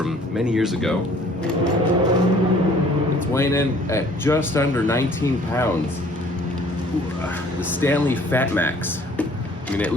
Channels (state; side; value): normal; both; correlation 0.55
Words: many years ago. It's weighing in at just under 19 pounds. The Stanley Fat Max. I mean, it